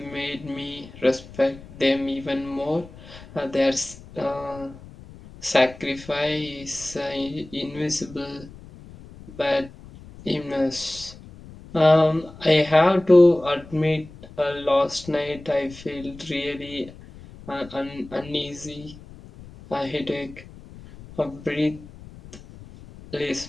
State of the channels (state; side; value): noise; left; rumble, 18 dB below the sound